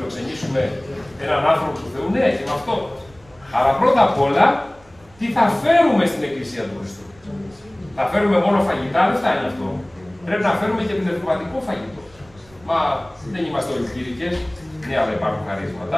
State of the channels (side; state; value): right; noise; rumble, 27 dB below the sound